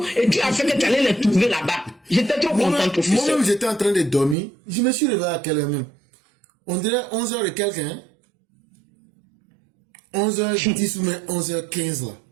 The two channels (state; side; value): drops out; left; at 4.4 s